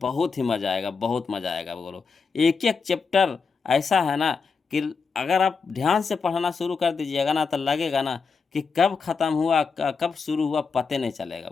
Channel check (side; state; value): right; quieter; 5.2 dB